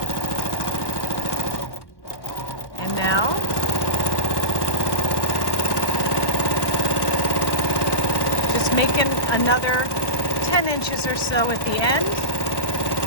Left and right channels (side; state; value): right; late; 1.1 ms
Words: And now, just making another 10 inches or so at the end.